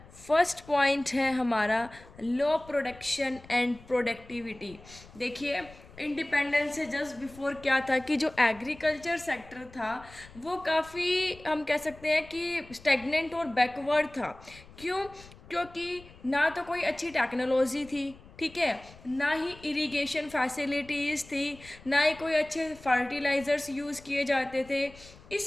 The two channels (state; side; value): noise; left; rumble, 21 dB below the sound